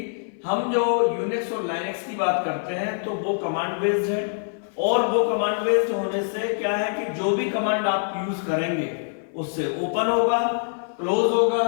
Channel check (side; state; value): right; silent; 61 dB below the other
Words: हम जो यूनिक्स और लाइनक्स की बात करते हैं तो वो कमांड बेस्ड है। और वो कमांड बेस्ड होने से क्या है कि जो भी कमांड आप यूज करेंगे उससे ओपन होगा, क्लोज होगा,